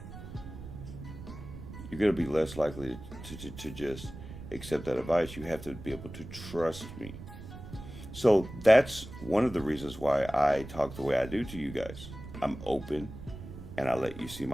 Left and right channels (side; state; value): right; noise; rumble, 12 dB below the sound